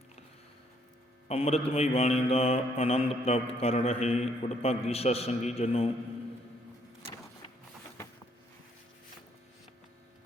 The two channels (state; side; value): normal; both; correlation 0.68